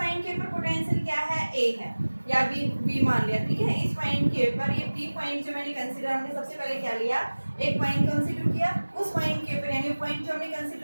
के ऊपर पोटेंशियल क्या है, ए है या बी मान लिया। ठीक है, इस पॉइंट के ऊपर ये पी पॉइंट जो मैंने कंसीडर, हमने सबसे पहले क्या लिया, एक पॉइंट कंसीडर किया। उस पॉइंट के ऊपर यानी पॉइंट जो हमने कंसीडर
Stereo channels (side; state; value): both; inverted; correlation -1.00